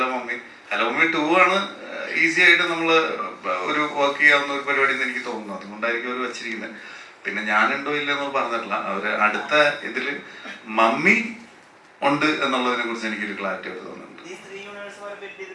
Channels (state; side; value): identical; both; correlation 1.00